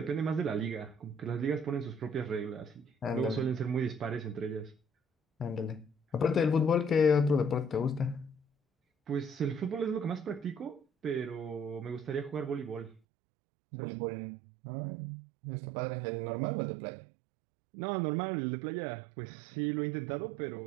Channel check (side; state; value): left; drops out; at 13.0 s